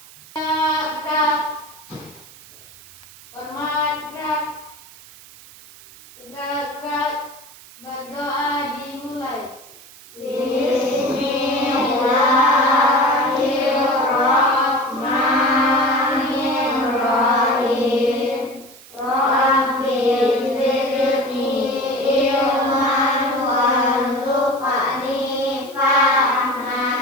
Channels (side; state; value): right; noise; hiss, 21 dB below the sound